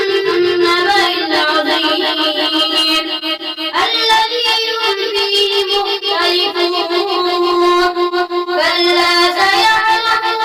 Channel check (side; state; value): both; identical; correlation 1.00